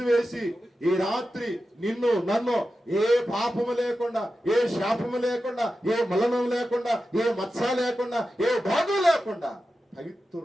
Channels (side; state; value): both; normal; correlation 0.92